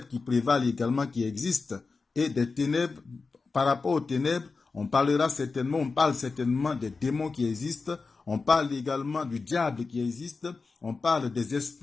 qui prévalent également, qui existent. Et des ténèbres, par rapport aux ténèbres, on parle certainement des démons qui existent, on parle également du diable qui existe, on parle des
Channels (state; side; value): quieter; right; 4.3 dB